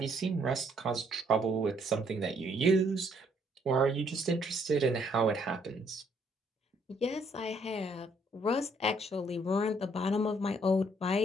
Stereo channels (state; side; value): normal; both; correlation 0.67